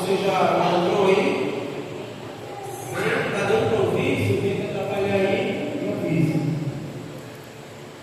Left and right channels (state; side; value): identical; both; correlation 1.00